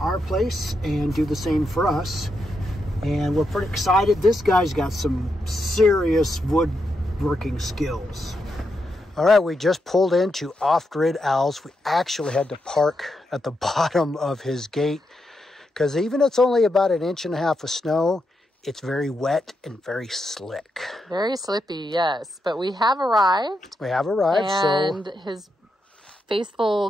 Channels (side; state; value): both; normal; correlation 0.84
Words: place and do the same for us. And we're pretty excited. This guy's got some serious woodworking skills. All right, we just pulled into OffGridAl's. We actually had to park at the bottom of his gate because even it's only about 1.5 inches of snow, it's very wet and very slick. Very slippy, yes. But we have arrived. We have arrived, and his faithful